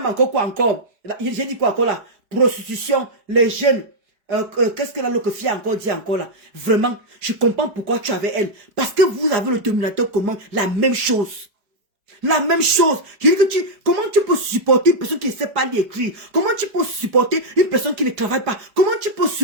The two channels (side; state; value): left; late; 4.8 ms